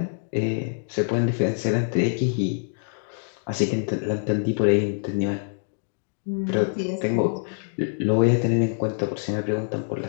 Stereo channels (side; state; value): right; silent; digital silence